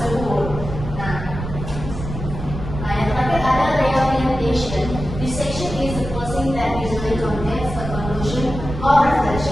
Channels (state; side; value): noise; right; rumble, 7 dB below the sound